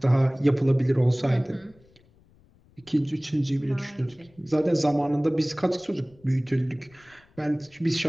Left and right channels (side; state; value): left; noise; rumble, 30 dB below the sound